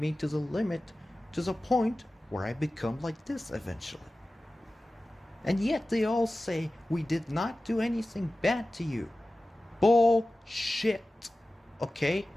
me to the limit, to the point where I become like this eventually. And yet they all say we did not do anything bad to you. bullshit. Okay?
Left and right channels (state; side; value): normal; both; correlation 0.96